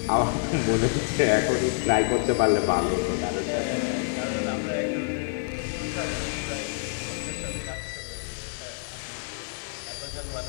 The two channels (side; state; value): right; silent; 60 dB below the other